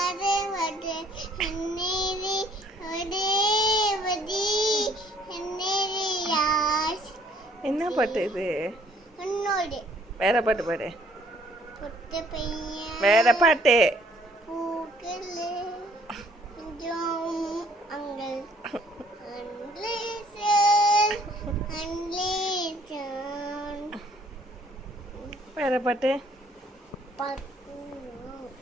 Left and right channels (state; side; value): normal; both; correlation 0.61